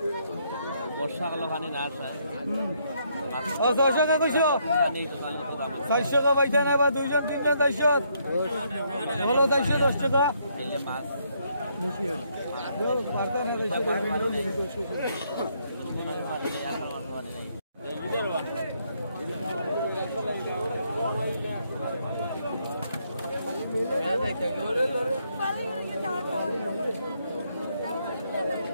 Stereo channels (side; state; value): both; inverted; correlation -0.72